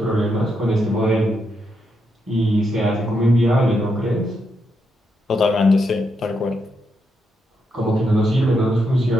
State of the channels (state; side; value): normal; both; correlation 0.81